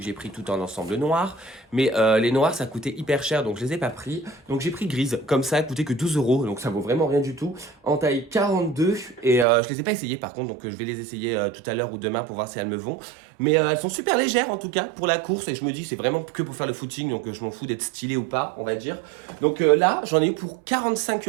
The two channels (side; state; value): left; drops out; at 9.5 s